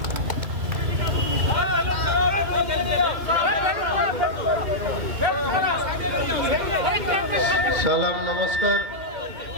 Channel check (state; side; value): late; left; 2.5 ms